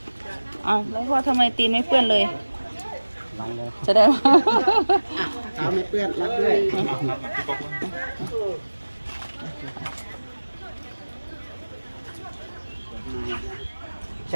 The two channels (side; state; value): both; inverted; correlation -1.00